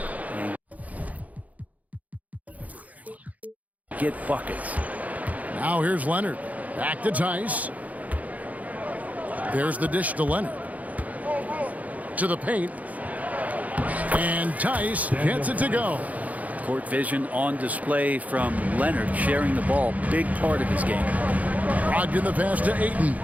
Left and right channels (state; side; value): late; left; 0.074 ms